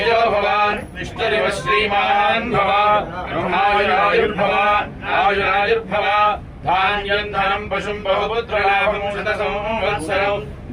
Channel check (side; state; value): both; identical; correlation 1.00